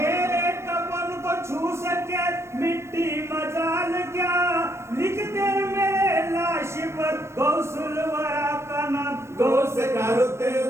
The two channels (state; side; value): late; left; 0.13 ms